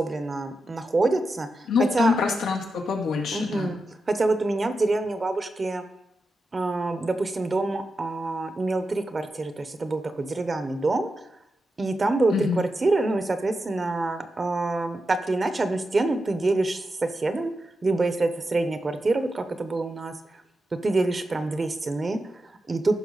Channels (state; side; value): normal; both; correlation 0.89